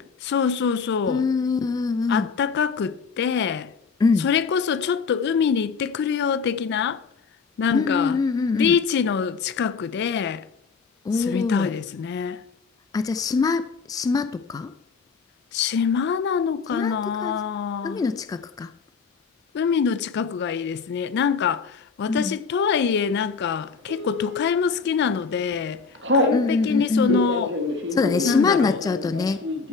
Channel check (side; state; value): right; quieter; 5.2 dB